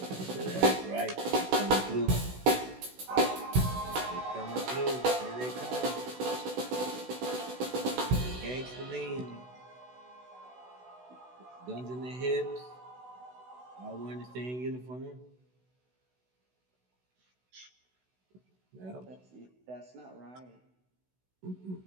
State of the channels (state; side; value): late; left; 16 ms